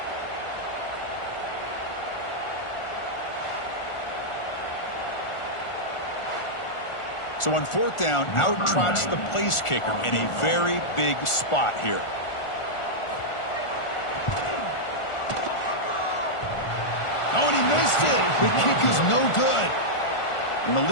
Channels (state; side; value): late; right; 1.4 ms